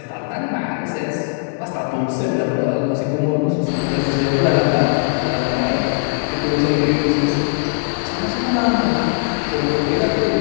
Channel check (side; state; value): right; silent; 66 dB below the other